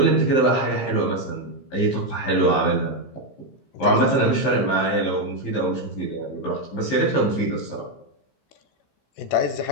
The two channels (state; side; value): late; right; 15 ms